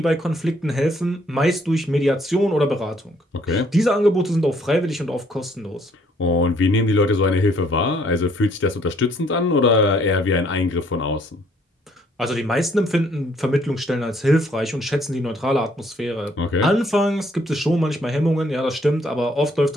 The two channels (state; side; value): normal; both; correlation 0.65